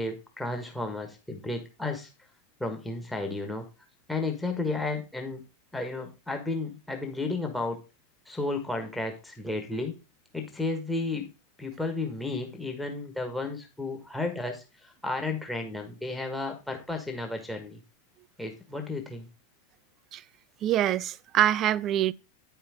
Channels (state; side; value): normal; both; correlation 0.50